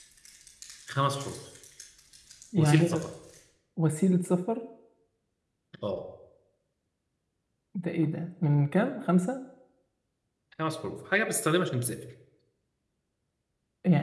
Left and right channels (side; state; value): both; identical; correlation 1.00